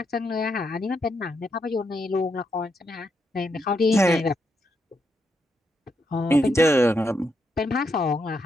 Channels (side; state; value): both; normal; correlation 0.80